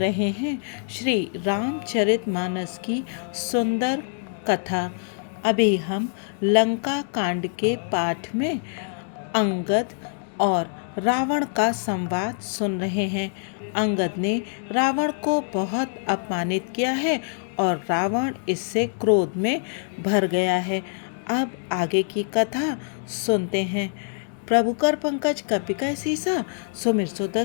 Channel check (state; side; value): silent; right; digital silence